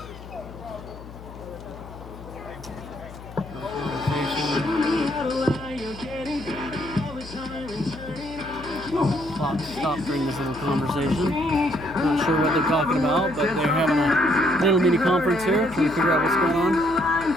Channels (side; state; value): left; noise; hum, 16 dB below the sound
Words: clock stopped during this little conversation. Not sure what they're talking about, but they're having a little mini conference here, trying to figure out what's going on.